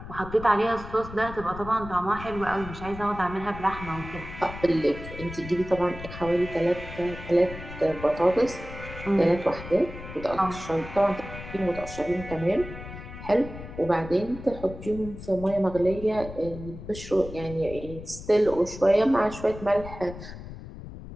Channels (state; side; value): noise; left; rumble, 12 dB below the sound